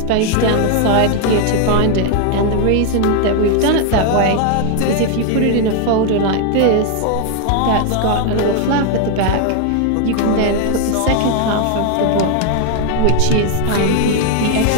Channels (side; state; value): both; different; correlation 0.00